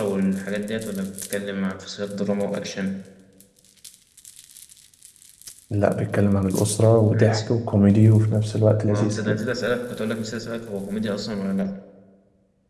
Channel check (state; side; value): identical; both; correlation 1.00